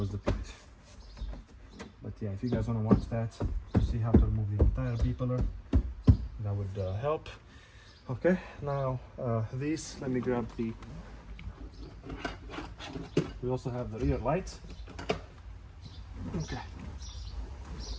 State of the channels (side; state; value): both; identical; correlation 1.00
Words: depleted. But yeah, if you guys want to watch that to see how to remove the entire B pillar, that would help. Okay, now these, let me grab the, we also have the rear light. Okay.